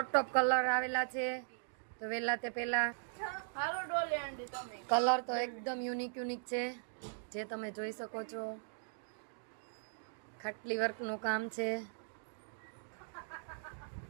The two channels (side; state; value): left; silent; digital silence